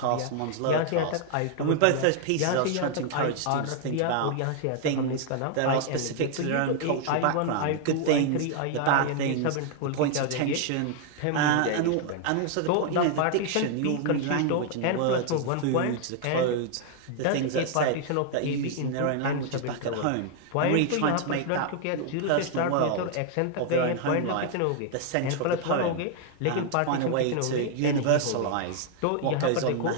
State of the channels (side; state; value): both; different; correlation 0.00